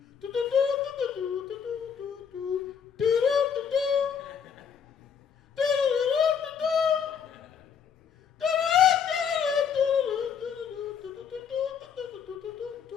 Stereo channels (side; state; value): right; quieter; 7.3 dB